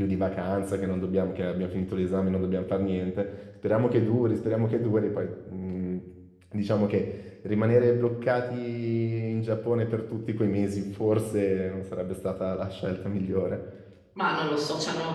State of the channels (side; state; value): both; identical; correlation 1.00